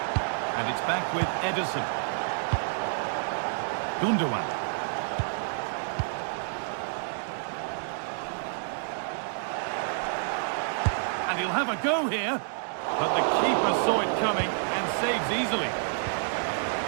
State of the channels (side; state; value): left; silent; digital silence